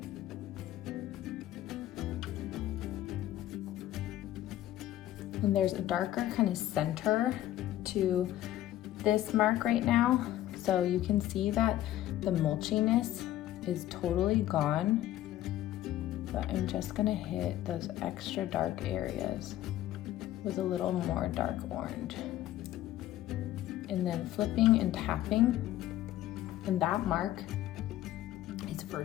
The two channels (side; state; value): right; quieter; 13.7 dB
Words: And there's a darker kind of center to this mark right now. So you can see that the mulchiness is totally gone. But I'm just gonna hit those extra dark areas with a little more dark orange. And then flipping and tapping, and that mark is